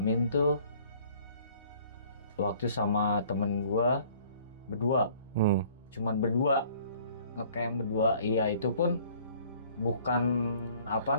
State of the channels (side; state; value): both; inverted; correlation -0.56